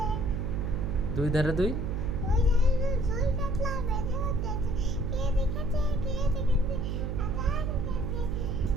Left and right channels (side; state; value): right; noise; hum, 2 dB below the sound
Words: দুই ধারে দুই ওই জায়গায় জুই কাটলা বেঁচে হচ্ছে কে দেখেছে